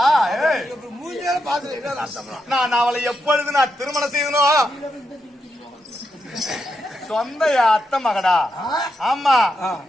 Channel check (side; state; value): both; normal; correlation 0.84